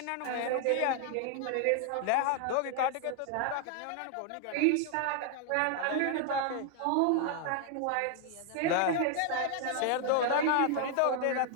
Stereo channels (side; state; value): both; different; correlation 0.00